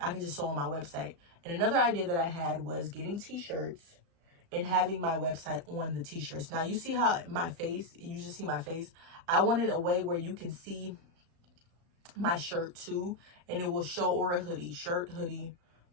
can just show on my website. And another idea that I had was getting t-shirts and having my website on the t-shirts. Now, you see how my face, you just see my face. I wanted a way where you can see my shirt too, and it will show, or a hoodie, shirt, hoodie,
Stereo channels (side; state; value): left; late; 36 ms